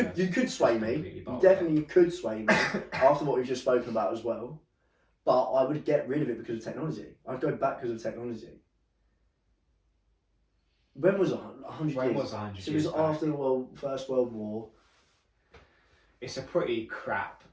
You could sway me. You definitely could sway me after what we've just spoken about as well. But I would get rid of it because of technology. I'd go back because of technology. When was 100 years? When was 100 So it years was back? after the First World War. It's a pretty crap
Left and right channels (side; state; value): both; identical; correlation 1.00